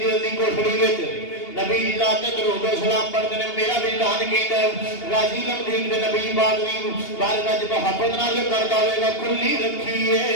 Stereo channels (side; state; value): right; late; 2.8 ms